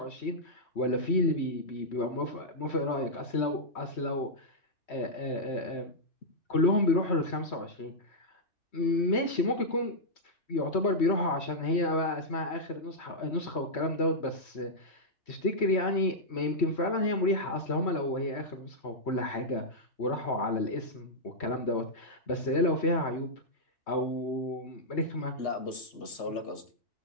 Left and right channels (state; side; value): late; right; 3.1 ms